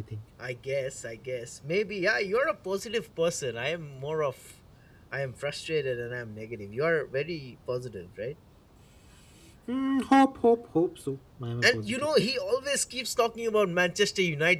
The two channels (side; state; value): both; identical; correlation 1.00